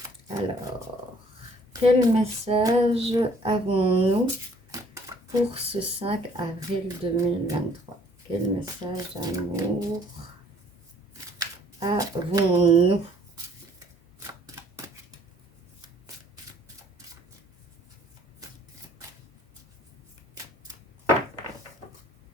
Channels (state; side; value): normal; both; correlation 0.59